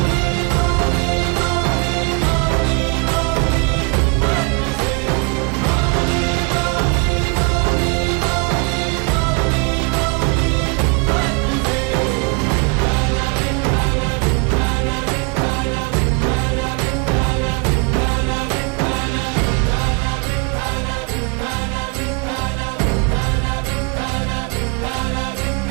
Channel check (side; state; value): left; quieter; 33.6 dB